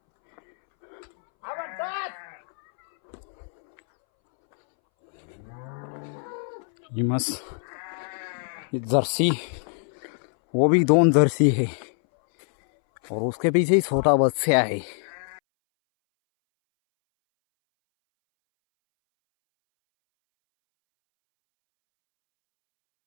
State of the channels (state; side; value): silent; right; 62 dB below the other